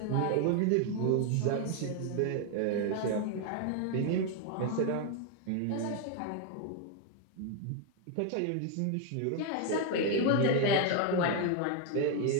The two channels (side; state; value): both; different; correlation 0.01